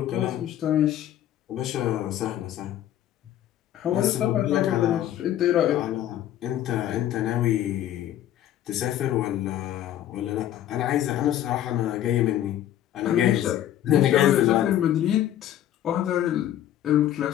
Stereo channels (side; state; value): right; quieter; 11.9 dB